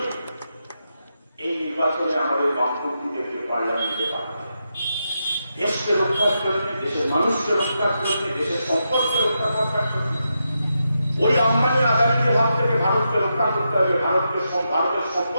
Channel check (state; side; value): inverted; both; correlation -0.85